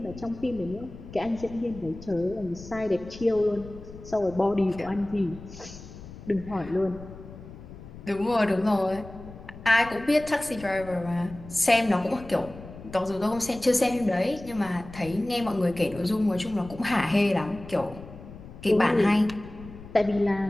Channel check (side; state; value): left; noise; rumble, 16 dB below the sound